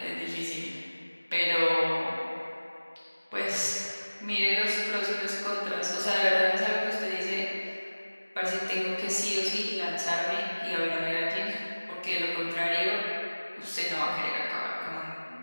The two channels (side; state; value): both; inverted; correlation -1.00